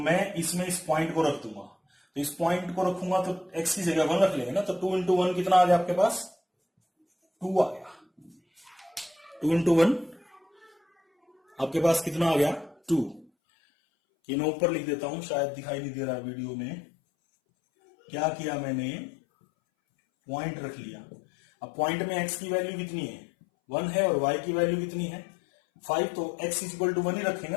इसमें इस पॉइंट को रख दूंगा। तो इस पॉइंट को रखूंगा तो x की जगह 1 रख लेंगे ना, तो 2 इंटू 1 कितना आ गया आपके पास, 2 आ गया। 2 इंटू 1 आपके पास कितना आ गया, 2। ये मैं ऊपर लिख देता हूं, शायद दिखाई नहीं दे रहा वीडियो में। क्या किया मैंने, पॉइंट रख लिया। अब पॉइंट में x की वैल्यू कितनी है, 1 है, और y की वैल्यू कितनी है, 5। तो x इज इक्वल टू 1 ही रखेंगे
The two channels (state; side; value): drops out; right; at 13.2 s